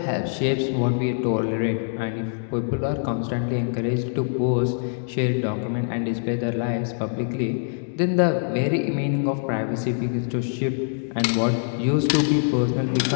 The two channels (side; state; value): right; silent; digital silence